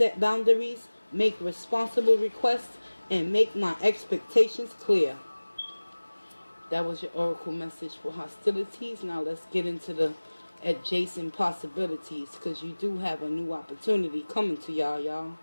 boundaries, make responsible requests, and make my expectations clear. That was your oracle message for hostilities. Now let's get into the adjacent possibilities, because you do have a new opportunity coming to y'all.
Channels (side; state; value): both; inverted; correlation -1.00